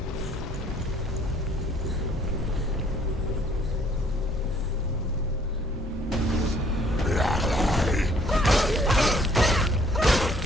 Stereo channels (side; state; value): both; normal; correlation 0.61